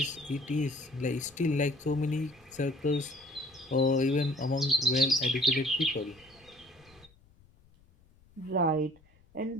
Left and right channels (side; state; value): left; noise; rumble, 29 dB below the sound